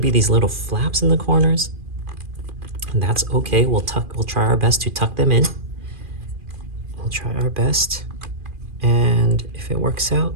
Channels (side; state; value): left; late; 2.4 ms